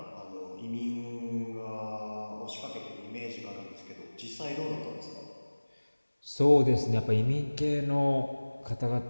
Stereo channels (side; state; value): both; inverted; correlation -1.00